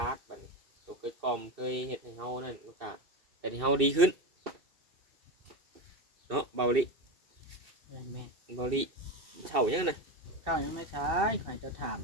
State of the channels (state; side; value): late; left; 2.7 ms